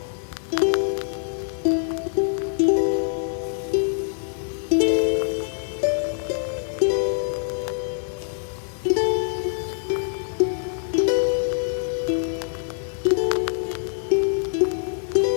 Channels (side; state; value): right; silent; digital silence